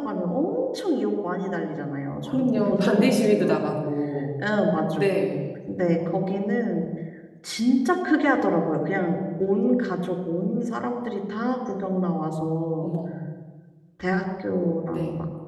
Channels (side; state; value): both; identical; correlation 1.00